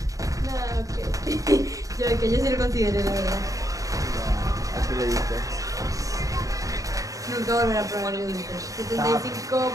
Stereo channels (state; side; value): late; left; 0.16 ms